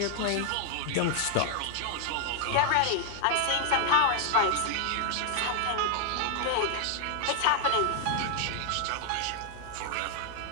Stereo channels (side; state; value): both; different; correlation 0.00